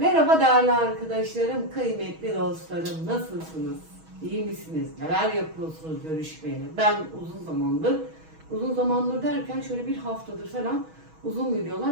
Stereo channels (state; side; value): late; left; 6.3 ms